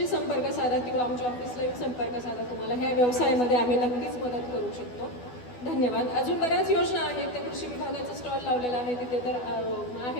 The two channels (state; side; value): late; right; 12 ms